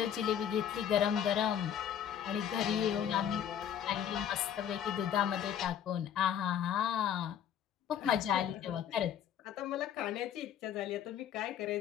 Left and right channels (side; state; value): right; quieter; 9.3 dB